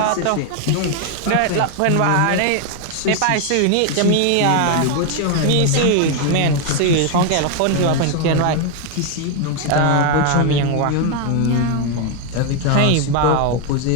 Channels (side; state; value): both; different; correlation 0.01